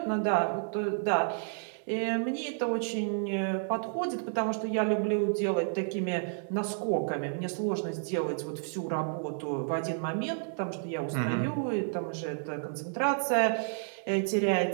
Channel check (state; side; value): silent; left; digital silence